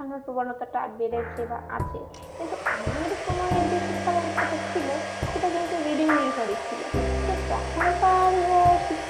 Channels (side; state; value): both; identical; correlation 1.00